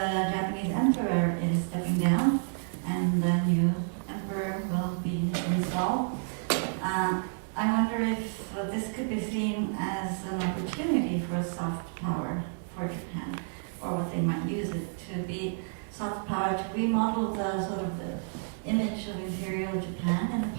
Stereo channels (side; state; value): left; silent; digital silence